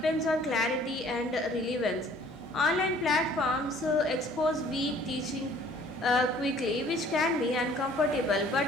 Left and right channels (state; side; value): normal; both; correlation 0.55